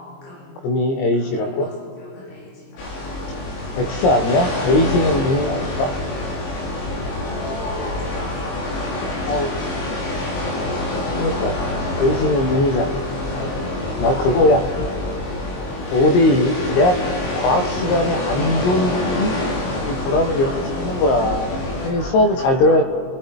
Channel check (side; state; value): right; late; 22 ms